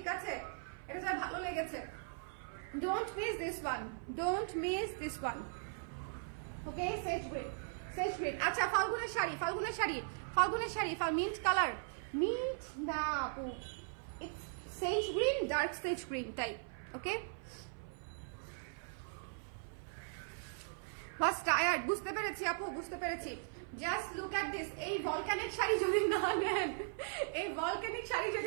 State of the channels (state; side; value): silent; left; 52 dB below the other